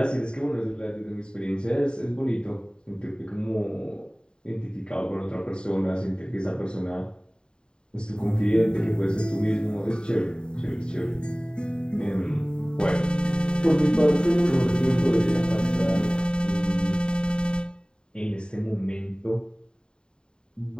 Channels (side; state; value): right; late; 0.049 ms